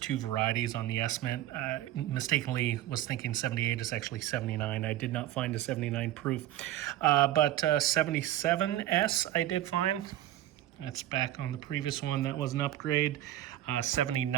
varieties on the S-Mint. Mistakenly was thinking 78 is actually 79. I did not find a 79 proof. But 77S I did find. That's back on the previous one. That was an upgrade.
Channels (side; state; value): left; quieter; 13.7 dB